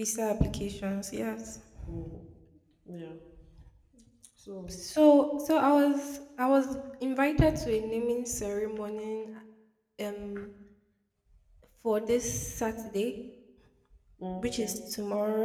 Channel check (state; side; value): identical; both; correlation 1.00